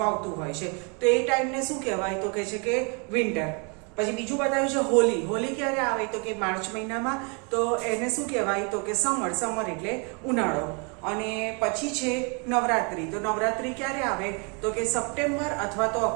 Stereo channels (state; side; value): quieter; left; 34.7 dB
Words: આવતું હોય છે, તો એ ટાઈમને શું કહેવાય તો કે છે કે વિન્ટર. પછી બીજું બતાવ્યું છે હોલી. હોલી ક્યારે આવે તો કે માર્ચ મહિનામાં, તો એને શું કહેવાય તો કે સમર. સમર એટલે ઉનાળો. અને પછી છે નવરાત્રી. તો નવરાત્રી ક્યારે આવે તો કે સપ્ટેમ્બર અથવા તો